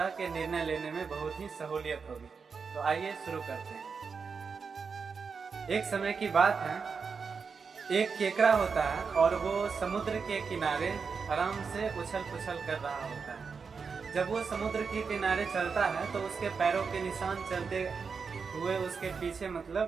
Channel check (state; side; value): quieter; left; 5.4 dB